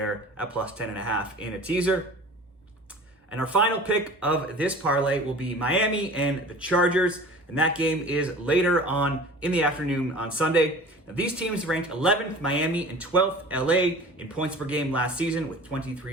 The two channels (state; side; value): normal; both; correlation 0.41